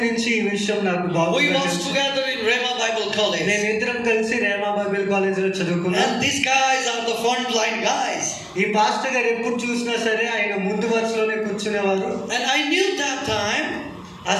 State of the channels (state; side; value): identical; both; correlation 1.00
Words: నుంచి ఈ విషయం నాకు బాగా We was together in Rhema Bible College. నేను ఇద్దరం కలిసి రేమా బైబిల్ కాలేజ్ లో చదువుకున్నాం. And these guys are the front line guys. ఈ పాస్టర్ గారు ఎప్పుడు చూసినా సరే ఆయన ముందు వరుసలోనే కూర్చునేవారు. And I knew that time ఆ